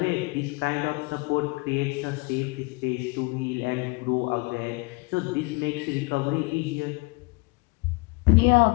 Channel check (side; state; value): right; quieter; 27.3 dB